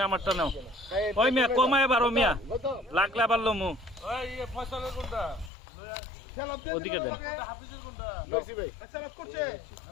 আমারটা নাও। ওই মিয়া কমায় বারো মিয়া, লাগলে আবার লমু ওদিকে দেন।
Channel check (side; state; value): right; drops out; at 5.5 s